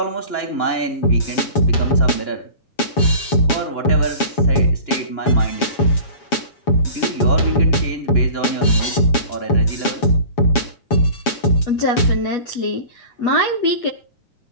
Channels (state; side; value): late; right; 7.2 ms